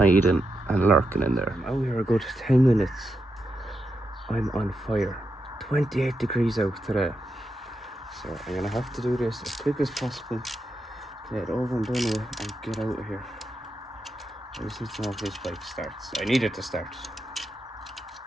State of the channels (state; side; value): normal; both; correlation 0.85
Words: and lurking in there. I'm out here a good 10 minutes. I'm on fire. 28 degrees out today. So I'm going to have to do this as quick as possible. Get it over and done with and get out of here. I just need to know if this bike starts. I need it to start.